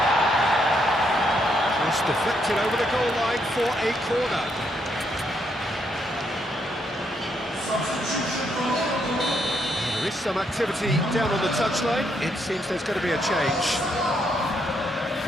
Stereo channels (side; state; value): both; normal; correlation 0.76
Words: Just deflected over the goal line for a corner. There is some activity down on the touchline. It seems there's going to be a change.